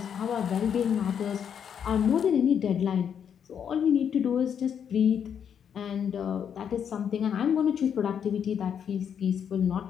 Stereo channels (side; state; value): right; quieter; 8.1 dB